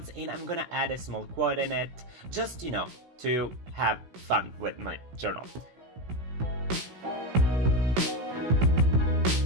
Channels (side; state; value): left; late; 16 ms